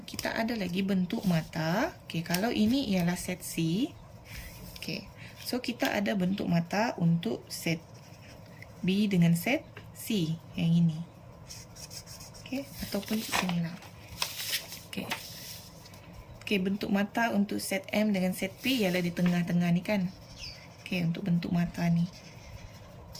kita ada lagi bentuk mata. Okey, kalau ini ialah set C. Okey, so kita ada bentuk mata untuk set B dengan set C yang ini. Okey, ataupun di sini lah. Okey. Okey, bentuk mata untuk set M dengan set P ialah di tengah-tengah ni kan. Okey, untuk bentuk mata ni.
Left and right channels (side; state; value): both; identical; correlation 1.00